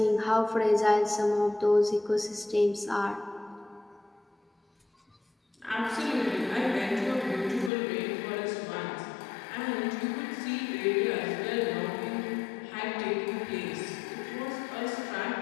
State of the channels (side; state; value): right; drops out; at 7.7 s